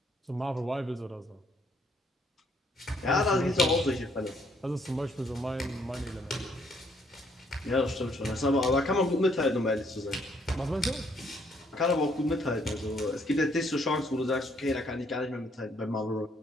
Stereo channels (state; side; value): normal; both; correlation 0.68